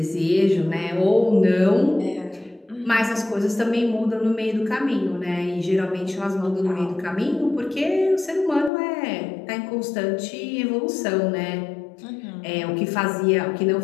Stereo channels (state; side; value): drops out; right; at 8.7 s